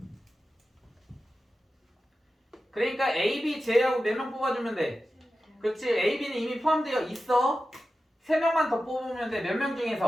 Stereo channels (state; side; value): normal; both; correlation 0.93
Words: 그러니까 A, B 제외하고 몇 명 뽑아주면 돼? 그렇지. A, B는 이미 포함되어 있어. 3명만 더 뽑으면 돼. 몇 명